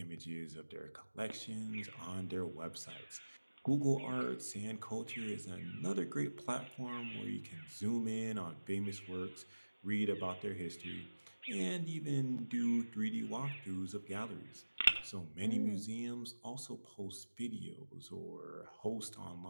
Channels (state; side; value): inverted; both; correlation -1.00